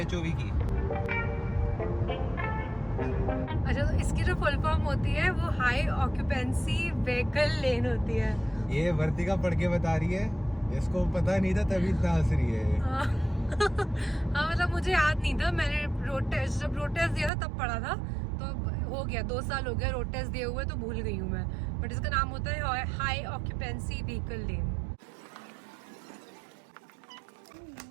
HOV की? अच्छा, तो इसकी जो फुल फॉर्म होती है वो हाई ऑक्यूपेंसी व्हीकल लेन होती है। ये वर्तिका पढ़ के बता रही है, इसको पता नहीं था तभी इतना हंस रही है। हाँ मतलब मुझे याद नहीं था, मैंने जब रोड टेस्ट दिया था तब पढ़ा था, तो हो गया 2 साल हो गया रोड टेस्ट दिए हुए, तो भूल गई हूँ मैं। बट इसका नाम होता है हाई ऑक्यूपेंसी व्हीकल लेन।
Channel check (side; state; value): left; drops out; at 17.3 s